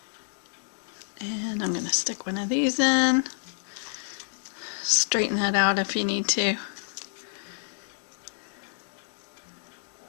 And I'm going to stick one of these in. Straighten that out if you need to.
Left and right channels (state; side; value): silent; right; digital silence